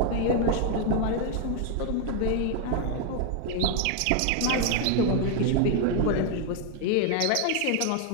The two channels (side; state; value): both; different; correlation 0.00